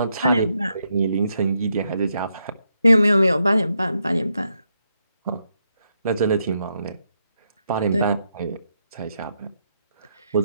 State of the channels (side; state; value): both; inverted; correlation -0.80